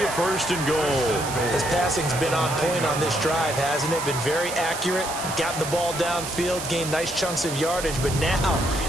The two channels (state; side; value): noise; right; hiss, 7 dB below the sound